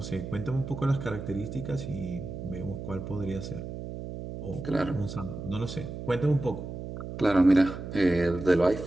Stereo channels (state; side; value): noise; right; hum, 8 dB below the sound